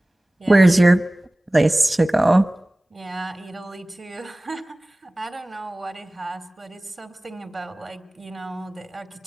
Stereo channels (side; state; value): both; normal; correlation 0.98